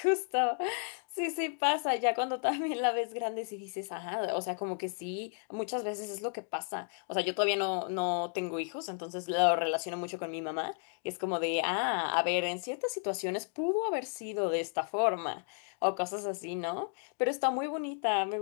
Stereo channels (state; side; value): silent; right; 56 dB below the other